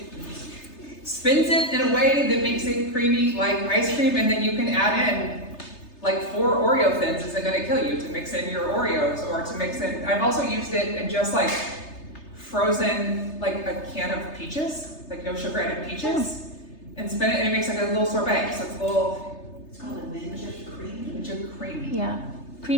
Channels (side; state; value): right; late; 3.3 ms